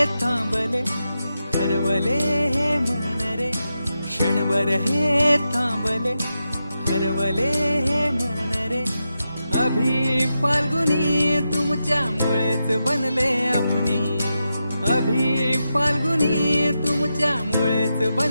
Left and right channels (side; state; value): both; inverted; correlation -0.88